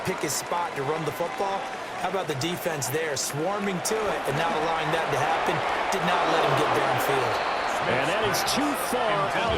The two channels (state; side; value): identical; both; correlation 1.00